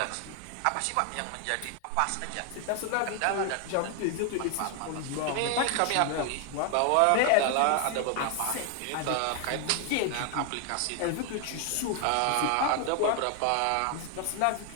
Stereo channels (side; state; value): both; different; correlation 0.00